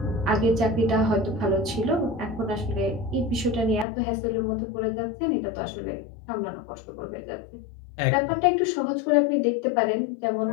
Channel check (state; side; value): drops out; right; at 3.9 s